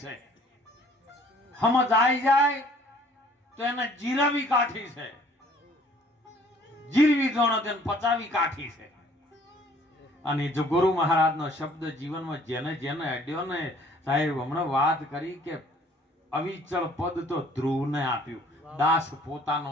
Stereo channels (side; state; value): both; normal; correlation 0.57